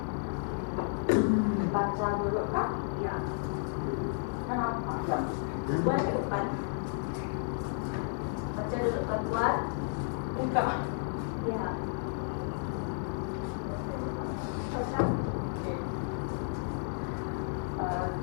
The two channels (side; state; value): right; silent; digital silence